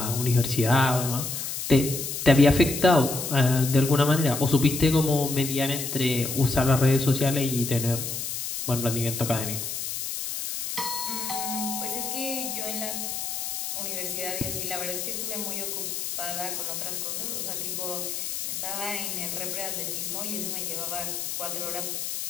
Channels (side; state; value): left; noise; hiss, 4 dB below the sound